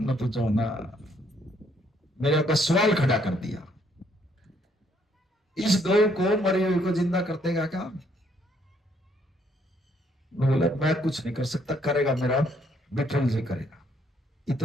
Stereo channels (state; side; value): normal; both; correlation 0.68